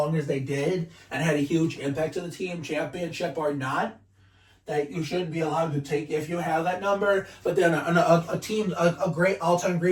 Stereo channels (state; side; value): identical; both; correlation 1.00